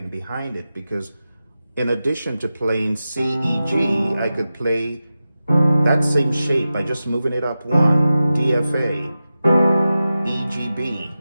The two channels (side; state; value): both; inverted; correlation -0.93